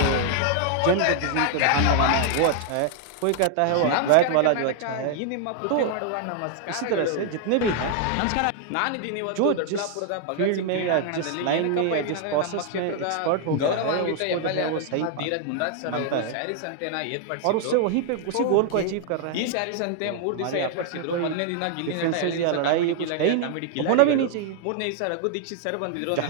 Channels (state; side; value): different; both; correlation 0.00